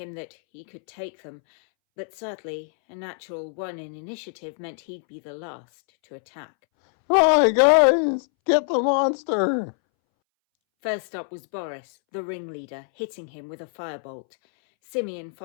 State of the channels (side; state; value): right; silent; 62 dB below the other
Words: that he could take them, but sadly, a natural 1 in initiative meant he'd be the last to attack. Hi guys, get the monster! First up was Boris, the ringleader, hitting him with a firebolt. Simeon